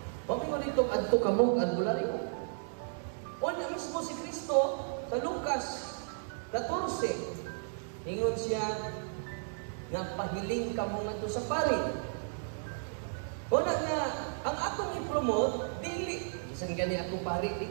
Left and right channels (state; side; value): silent; left; digital silence